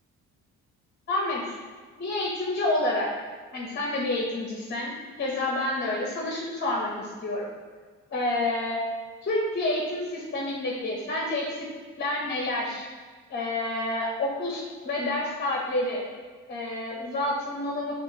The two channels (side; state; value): both; normal; correlation 0.09